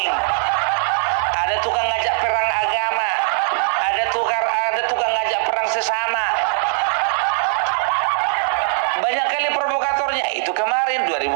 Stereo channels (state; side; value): silent; left; digital silence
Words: ada tukang ngajak perang agama, ada tukang ngajak perang sesama. Banyak kali provokatornya. Itu kemarin